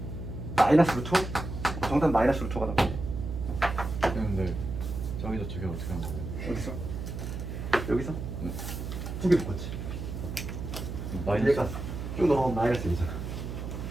마이너스 루트 5? 정답 마이너스 루트 5가 나오네. 근데 저기서 저게 어떻게 하는 거예요? 어디서? 여기서? 네. 두 개 묶었지. 얘가 쭉 넘어가면 마이너스 1이잖아.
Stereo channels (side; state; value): right; noise; hum, 6 dB below the sound